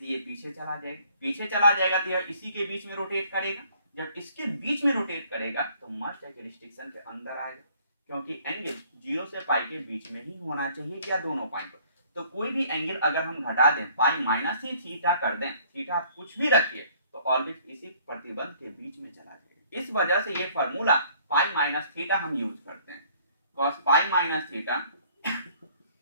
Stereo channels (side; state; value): both; inverted; correlation -0.59